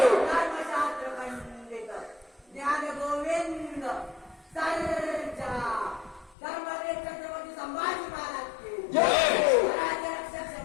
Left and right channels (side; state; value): right; drops out; at 6.4 s